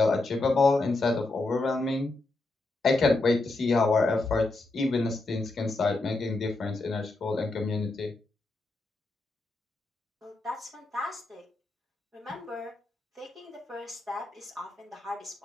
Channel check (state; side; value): quieter; right; 3.1 dB